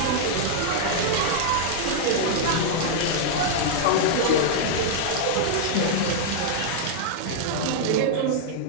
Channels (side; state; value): both; different; correlation -0.01